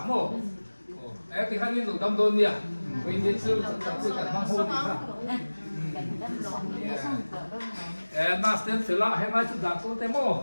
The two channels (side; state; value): both; inverted; correlation -1.00